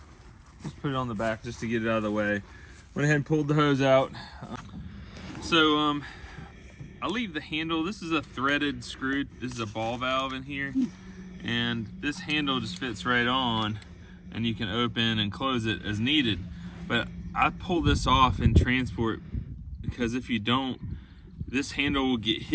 Just put it on the back just to get it out of the way. Went ahead and pulled the hose out. I'll leave the handle. This is a threaded screw. This is a ball valve in here. And this handle just fits right on, and you can open and close it as needed. But I pull this off in transport because if you don't, this handle will get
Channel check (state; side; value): identical; both; correlation 1.00